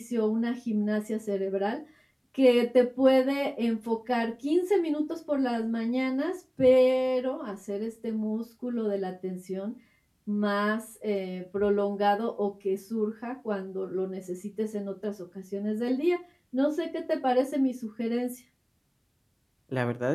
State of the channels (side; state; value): both; identical; correlation 1.00